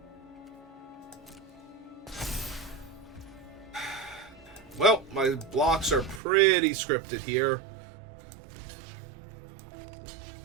Well, my blocks are pretty scripted here.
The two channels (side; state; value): left; drops out; at 6.2 s